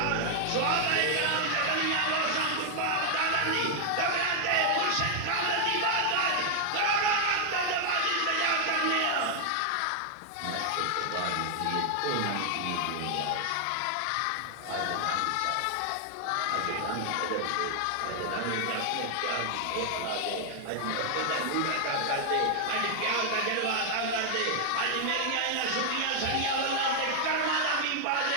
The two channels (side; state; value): both; different; correlation 0.00